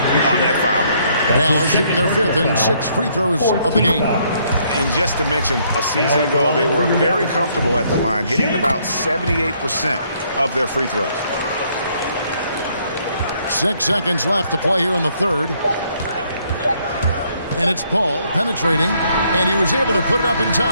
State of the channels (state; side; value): inverted; both; correlation -0.68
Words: that foul. Dallas shooting their 5th and 6th free throws of the game. And just to mention, a season ago, they were very comfortable at the line, hitting about 78% of their free throws. 6 seconds left to play here in the third. And it's Paul penetrating. And he was able to put it up in